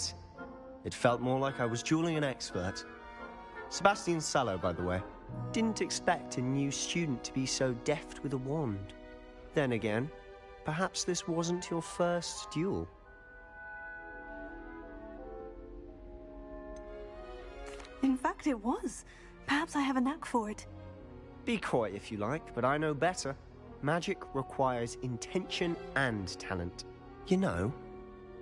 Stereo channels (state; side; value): identical; both; correlation 1.00